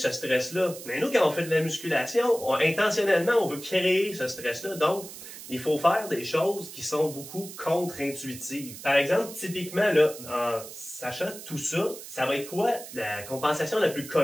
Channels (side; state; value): right; noise; hiss, 13 dB below the sound